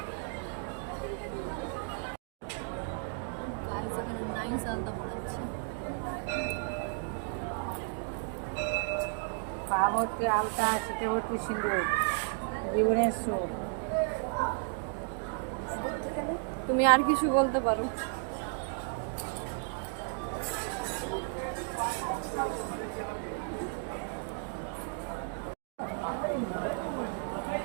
গাইস এখানে নাইস আলতা পড়াচ্ছি। পা ভর্তি আলতা, শীতে ভর্তি সিঁদুর, জীবনের সুখ। তুমি আর কিছু বলতে পারো।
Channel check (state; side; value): silent; left; 55 dB below the other